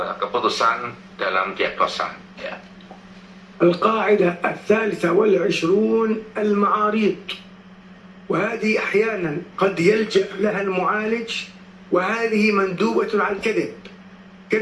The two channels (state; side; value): identical; both; correlation 1.00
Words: keputusan dalam diagnosa. Ya. القاعدة 23 المعاريض، وهذه أحيانا قد يلجأ لها المعالج، وهذه مندوبة على الكذب.